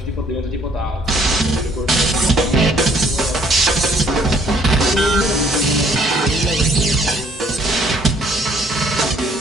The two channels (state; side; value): normal; both; correlation 0.62